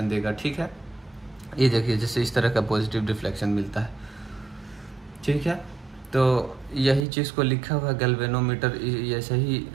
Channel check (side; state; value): left; drops out; at 7.1 s